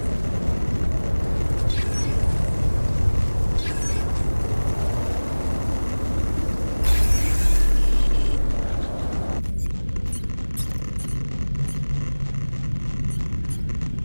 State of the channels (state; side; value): inverted; both; correlation -1.00